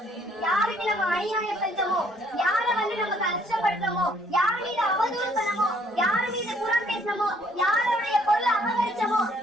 யாருக்கு நம்ம அநியாயம் செஞ்சோமோ, யார நம்ம கஷ்டப்படுத்தமோ, யார் மீது அவதூறு பண்ணமோ, யார் மீது புறம் பேசணுமோ, யாருடைய பொருளை அபகரிச்சமோ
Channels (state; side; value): normal; both; correlation 0.63